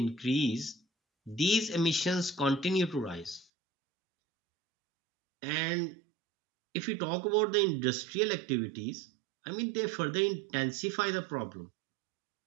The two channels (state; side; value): drops out; left; at 3.5 s